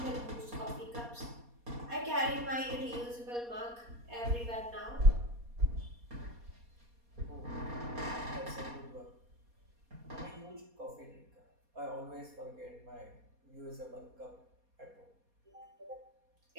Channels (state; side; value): late; left; 4.2 ms